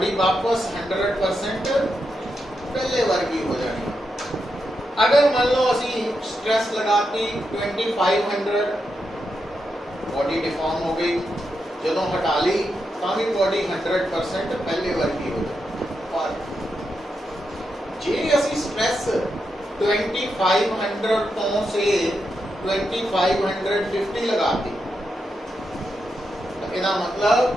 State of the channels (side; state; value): both; normal; correlation 0.85